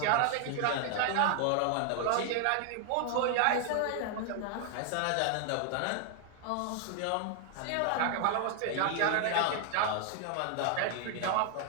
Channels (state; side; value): different; both; correlation 0.00